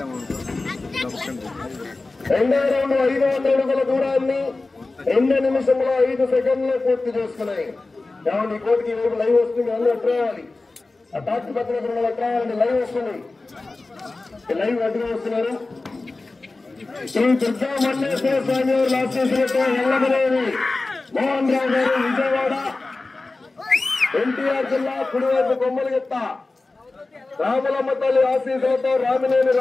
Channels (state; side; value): quieter; right; 3.4 dB